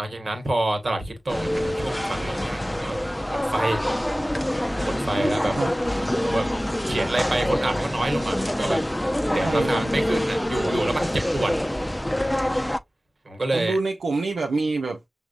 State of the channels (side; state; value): both; normal; correlation 0.97